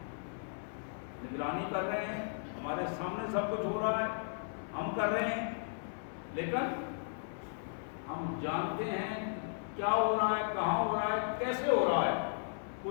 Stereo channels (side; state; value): right; silent; 54 dB below the other